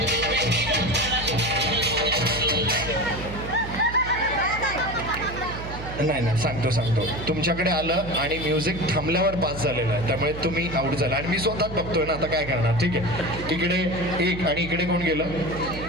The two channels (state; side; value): noise; right; hum, 10 dB below the sound